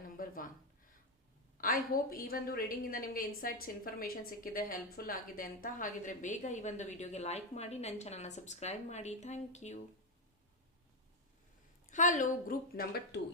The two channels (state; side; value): normal; both; correlation 0.07